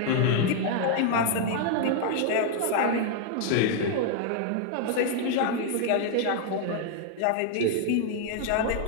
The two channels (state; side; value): different; both; correlation 0.00